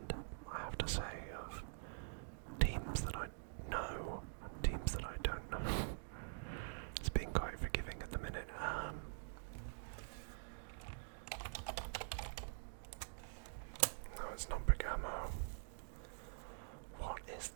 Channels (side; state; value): left; silent; digital silence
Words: I have to say, of teams that I know and teams that I don't know. It's being quite forgiving at the minute. No, it's not Bergamo. What is